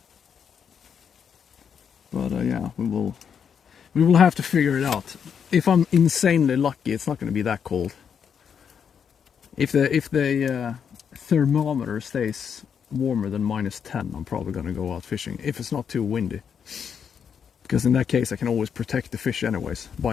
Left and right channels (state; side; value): quieter; right; 7.4 dB